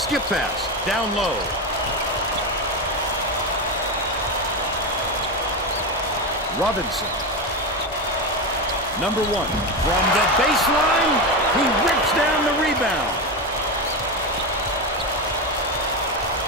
pass. Down low. Robinson. Number 1. From the baseline, he rips down the rebound.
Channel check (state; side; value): normal; both; correlation 0.15